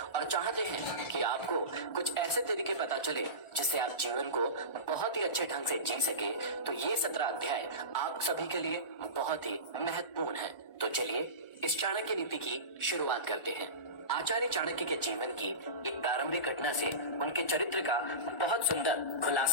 चाहते हैं कि आपको कुछ ऐसे तरीके पता चले जिससे आप जीवन को बहुत ही अच्छे ढंग से जी सके, तो ये 17 अध्याय आप सभी के लिए बहुत ही महत्वपूर्ण है। तो चलिए इस चाणक्य नीति की शुरुआत करते हैं। आचार्य चाणक्य के जीवन की एक प्रारंभिक घटना से उनके चरित्र का बहुत सुंदर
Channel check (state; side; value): late; right; 1.4 ms